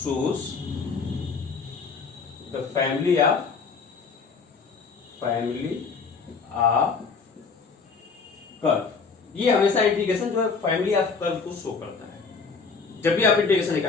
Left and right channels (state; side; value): quieter; right; 5.0 dB